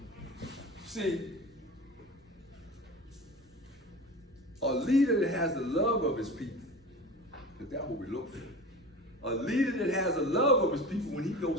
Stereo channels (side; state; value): both; normal; correlation 0.33